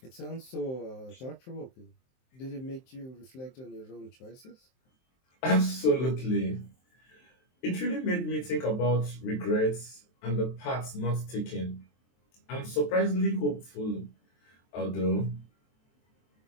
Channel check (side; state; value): right; late; 23 ms